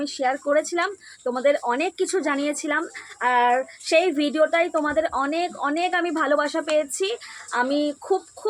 শেয়ার করেছিলাম, তোমাদের অনেক কিছু জানিয়েছিলাম। আর সেই ভিডিওটাই তোমাদের অনেক অনেক আমি ভালোবাসা পেয়েছি। আমি খুব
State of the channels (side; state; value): both; identical; correlation 1.00